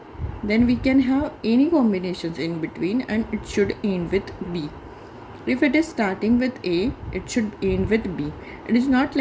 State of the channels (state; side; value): identical; both; correlation 1.00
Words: then we can have any combinations in between and it should end with B. If it is starting with A, it should end with B. It is not